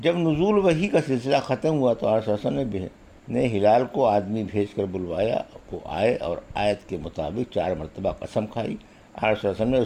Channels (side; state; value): both; identical; correlation 1.00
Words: نزول وحی کا سلسلہ ختم ہوا تو آپ صلی اللہ علیہ وسلم نے ہلال کو آدمی بھیج کر بلوایا، وہ آئے اور آیت کے مطابق 4 مرتبہ قسم کھائی۔ آپ صلی اللہ علیہ وسلم نے